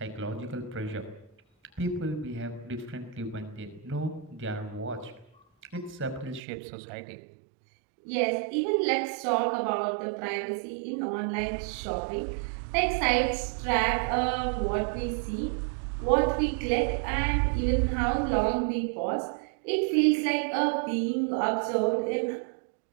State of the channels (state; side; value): drops out; left; at 6.4 s